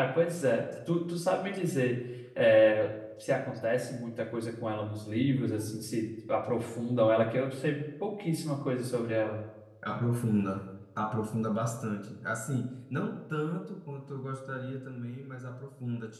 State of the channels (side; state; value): both; identical; correlation 1.00